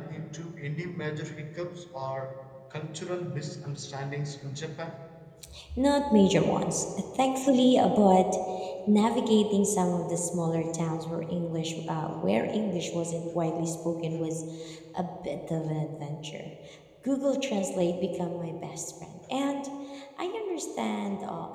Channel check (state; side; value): identical; both; correlation 1.00